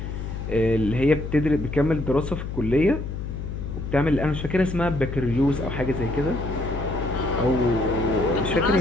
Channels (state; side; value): noise; left; hum, 6 dB below the sound